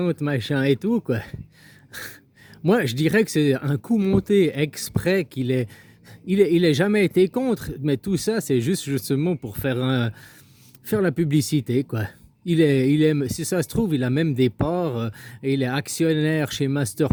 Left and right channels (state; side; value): identical; both; correlation 1.00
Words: machin et tout, quoi. Moi, je dirais que c'est un coup monté exprès il est jamais été contre, mais tout ça, c'est juste justement pour faire la publicité, quoi. Si ça se trouve, il a même des parts, et il est actionnaire chez Master